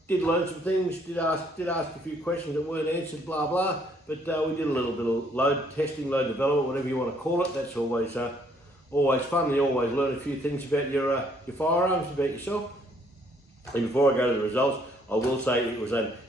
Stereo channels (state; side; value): normal; both; correlation 0.66